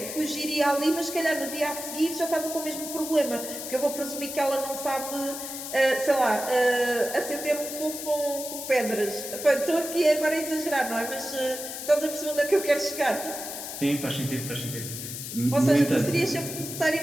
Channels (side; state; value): left; noise; hiss, 8 dB below the sound